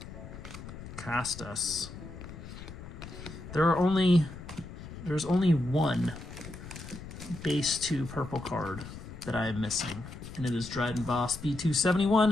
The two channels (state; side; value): noise; left; rumble, 12 dB below the sound